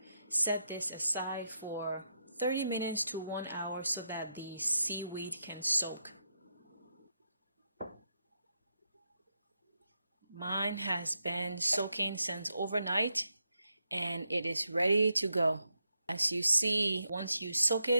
Set this aside for 30 minutes to 1 hour so that the seaweed can soak. Mine has been soaking since overnight and it is ready to go. As you see, once you soak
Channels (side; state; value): both; inverted; correlation -0.83